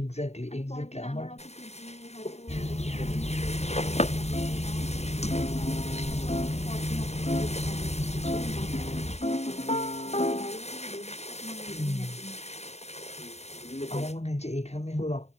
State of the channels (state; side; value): late; right; 0.32 ms